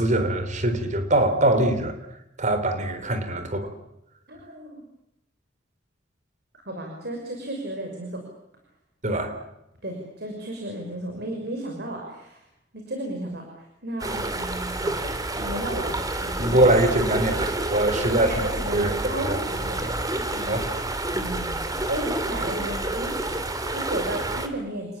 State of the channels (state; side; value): normal; both; correlation 0.23